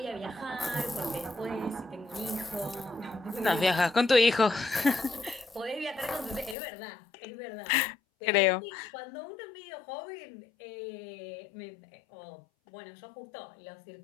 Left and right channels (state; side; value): drops out; right; at 6.6 s